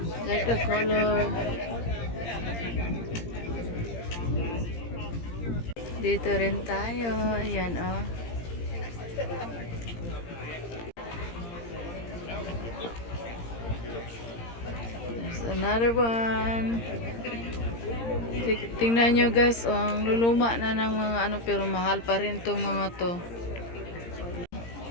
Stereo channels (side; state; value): right; late; 17 ms